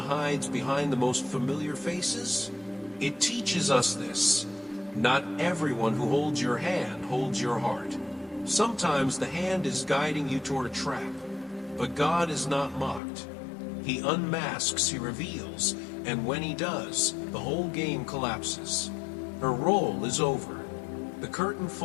behind the most familiar faces? It teaches us this. Not everyone who holds your hand holds your heart. Sometimes the hand is guiding you toward a trap, but God is not mocked. He unmasks, he reveals, and when he does, the whole game collapses. Her role is over. The curtain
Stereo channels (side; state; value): right; drops out; at 13.0 s